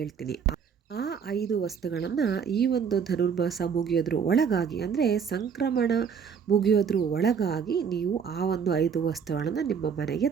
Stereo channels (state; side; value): quieter; left; 6.7 dB